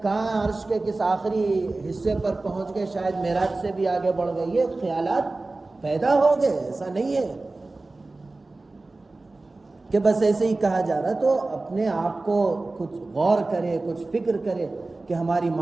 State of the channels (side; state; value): left; quieter; 3.2 dB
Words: کہاں عرش کے کس آخری حصے پر پہنچ گئے، شاید معراج سے بھی آگے بڑھ گئے. یہ خیالات پیدا ہو گئے. ایسا نہیں ہے کہ بس ایسے ہی کہا جا رہا. تو اپنے آپ کو کچھ غور کرے، کچھ فکر کرے کہ ہماری